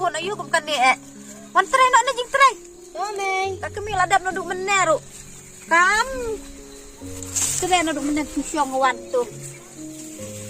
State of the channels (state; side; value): identical; both; correlation 1.00